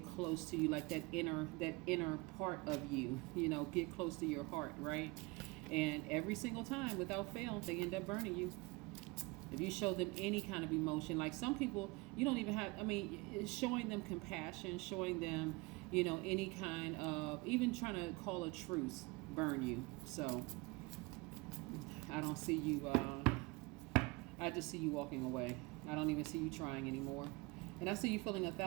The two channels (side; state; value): left; quieter; 25.0 dB